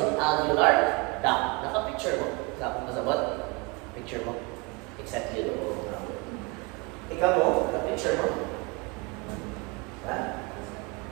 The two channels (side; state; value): left; quieter; 29.1 dB